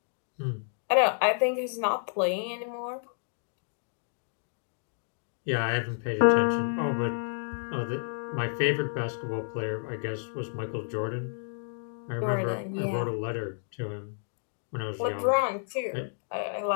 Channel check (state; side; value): silent; right; digital silence